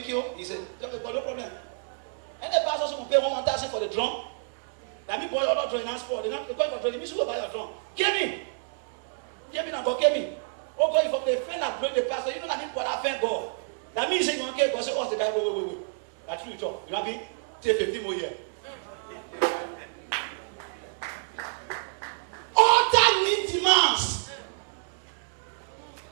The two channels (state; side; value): silent; left; digital silence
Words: you. He said, no problem. And the pastor will pay 1,000 for the drum. That means boy, you're not drawing hands for. They're not going for drum. You should go buy your drum. Give me now, God, give me. Oh God, if the friend that bring the pastor, you know that means God I thank God. That means you want to God say, what's the guy? Wait. That's true, talk. You know what I mean? Take 15 more years. Altar need demands.